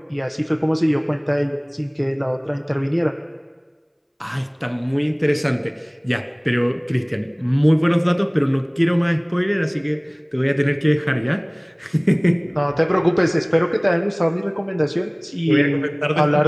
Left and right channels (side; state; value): both; identical; correlation 1.00